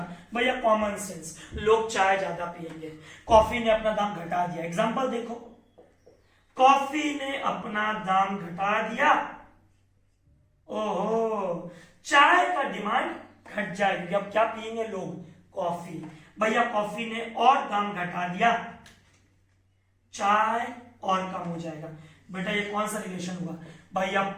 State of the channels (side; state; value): both; identical; correlation 1.00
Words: भैया, कॉमन सेंस, लोग चाय ज्यादा पिएंगे, कॉफी ने अपना दाम घटा दिया। एग्जांपल देखो, कॉफी ने अपना दाम घटा दिया, ओहो, चाय का डिमांड घट जाएगी। अब क्या पिएंगे लोग? कॉफी। भैया कॉफी ने और दाम घटा दिया, चाय और कम हो जाएगा। बेटा ये कौन सा रिलेशन हुआ? भैया